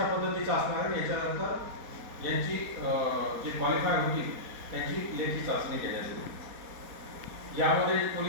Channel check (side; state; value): left; late; 4.2 ms